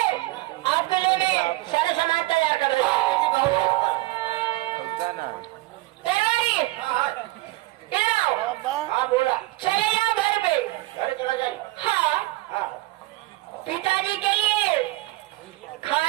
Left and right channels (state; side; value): quieter; left; 20.3 dB